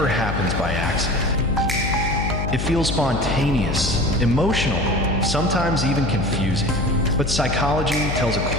happens by accident. It feels spontaneous, emotional, sometimes even confusing. But psychology tells a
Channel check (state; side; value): noise; left; hum, 3 dB below the sound